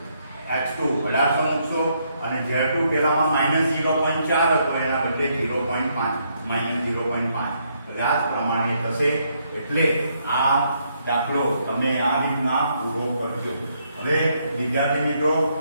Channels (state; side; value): inverted; both; correlation -0.74